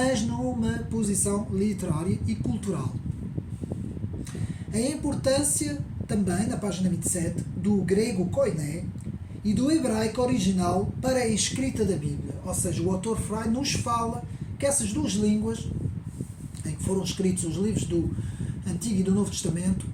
numa posição literária e cultural. A importância também, na página 27, do grego koiné e do hebraico original para a escrita da Bíblia. Ou seja, o autor Freud nos fala que essas duas línguas, em que foram escritos os livros do Antigo e do Novo Testamento,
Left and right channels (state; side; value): identical; both; correlation 1.00